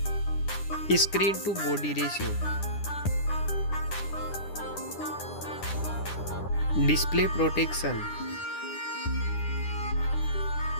Screen to body ratio. Display protection.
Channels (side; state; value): right; late; 9.9 ms